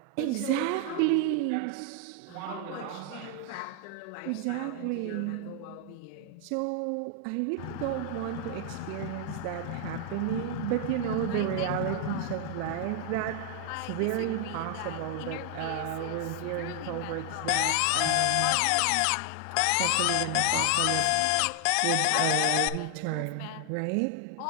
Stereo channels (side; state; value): both; different; correlation 0.00